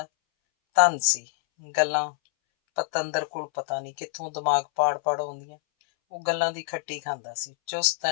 ਧਨ ਸੀ, ਗੱਲਾਂ ਪਤੰਦਰ ਕੋਲ ਪਤਾ ਨਹੀਂ ਕਿੱਥੋਂ ਦਿਮਾਗ ਪਾੜ ਪਾੜ ਆਉਂਦੀਆਂ। ਉਹ ਗੱਲਾਂ ਦੀ ਖੱਟੀ ਖਾਂਦਾ ਸੀ, ਚੁਸਤ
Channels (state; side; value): silent; right; 61 dB below the other